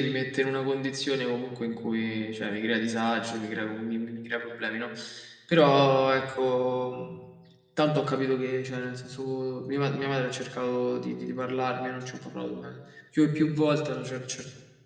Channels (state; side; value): identical; both; correlation 1.00